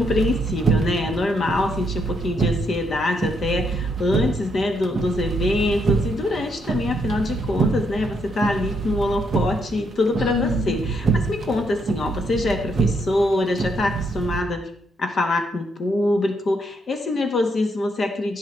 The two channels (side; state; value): both; normal; correlation 0.75